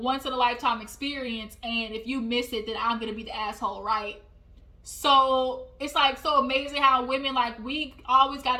experience, and if you miss it, then I'm going to be the asshole, right? So it's like so amazing how women, like, we always got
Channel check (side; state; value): both; identical; correlation 1.00